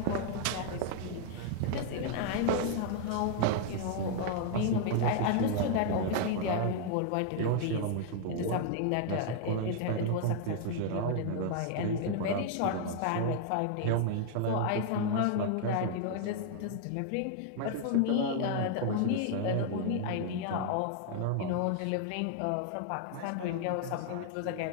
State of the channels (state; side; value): different; both; correlation -0.01